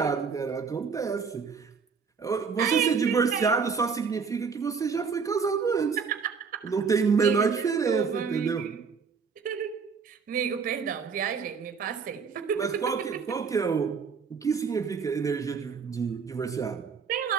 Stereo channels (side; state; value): left; quieter; 5.7 dB